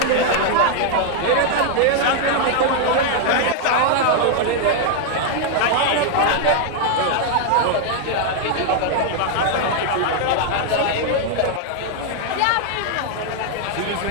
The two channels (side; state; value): both; different; correlation 0.00